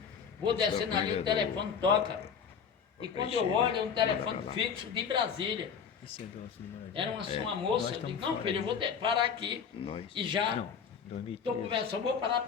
vou descendo ali, o telefone toca. E quando eu olho, é um telefone fixo de Brasília. Era uma moça, eu digo, não filho, eu vou parar aqui e já estou conversando, vou parar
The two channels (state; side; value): quieter; right; 6.9 dB